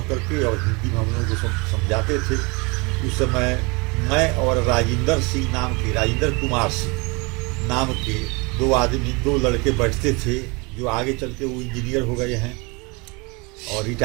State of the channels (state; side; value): quieter; left; 28.3 dB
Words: करके और हिंदी में हम लोगों को समझाते थे। उस समय मैं और राजेंद्र कुमार सिंह नाम के दो लड़के बैठते थे, जो आगे चल के वो इंजीनियर हो गए हैं और